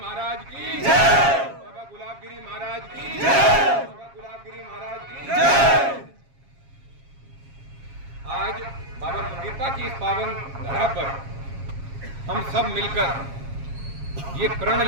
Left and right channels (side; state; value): left; late; 7.3 ms